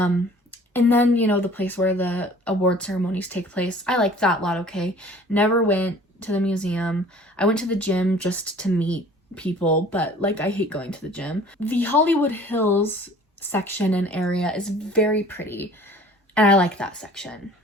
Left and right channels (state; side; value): normal; both; correlation 0.49